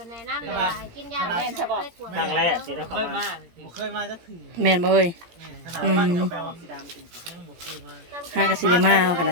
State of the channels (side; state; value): left; late; 17 ms